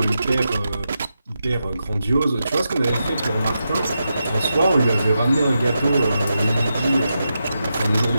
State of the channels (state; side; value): inverted; both; correlation -0.87